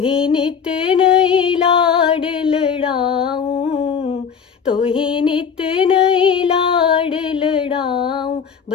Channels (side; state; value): right; quieter; 6.8 dB